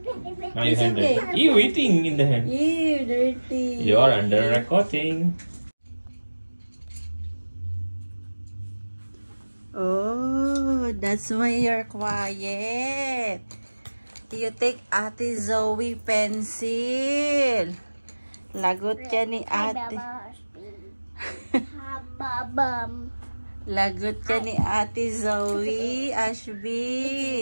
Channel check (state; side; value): inverted; both; correlation -1.00